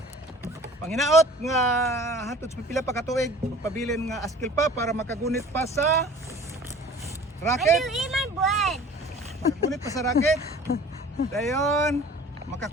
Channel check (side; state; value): both; normal; correlation 0.46